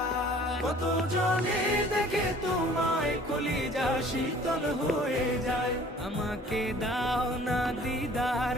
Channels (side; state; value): both; normal; correlation 0.51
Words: কত জনে দেখে তোমায় কলিজা শীতল হয়ে যায়। আমাকে দাও না দিদার